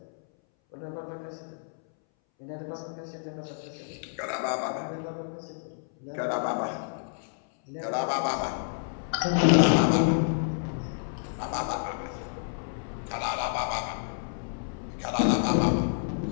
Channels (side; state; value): right; silent; 58 dB below the other